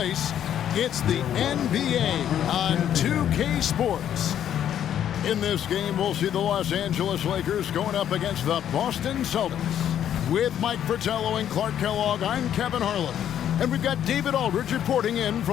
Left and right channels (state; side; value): quieter; right; 10.2 dB